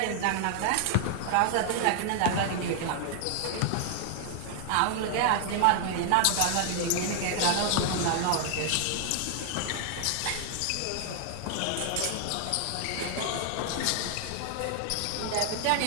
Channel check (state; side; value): different; both; correlation 0.00